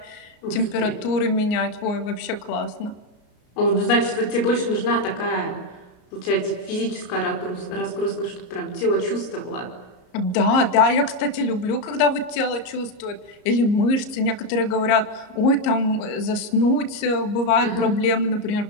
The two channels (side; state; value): right; late; 34 ms